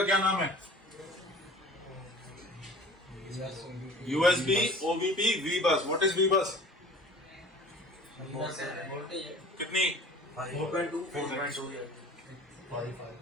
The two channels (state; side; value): normal; both; correlation 0.44